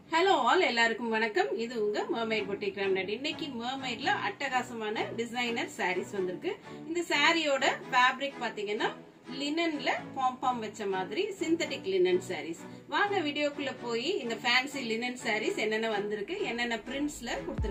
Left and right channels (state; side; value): identical; both; correlation 1.00